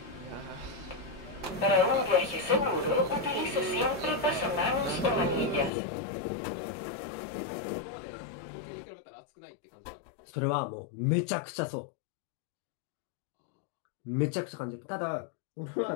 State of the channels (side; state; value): right; drops out; at 5.7 s